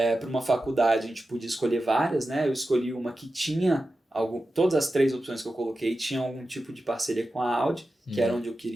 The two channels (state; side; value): normal; both; correlation 0.92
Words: para uma faculdade, a gente podia escolher várias, né? Eu escolhi uma que tinha todas as 3 opções que eu coloquei tinham algum tipo de parceria com a Audi, que era onde eu